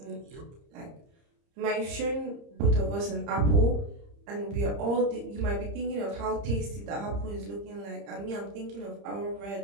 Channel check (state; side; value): late; left; 30 ms